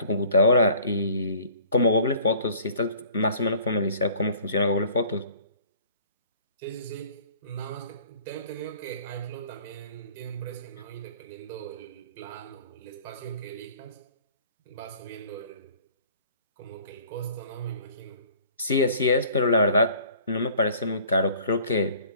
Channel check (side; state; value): both; inverted; correlation -0.51